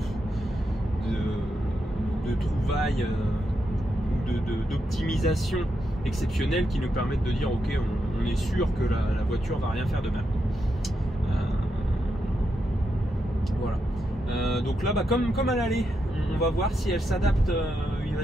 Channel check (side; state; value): both; normal; correlation 0.83